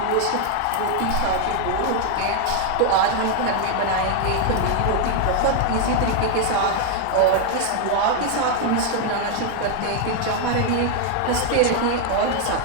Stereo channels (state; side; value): different; both; correlation 0.00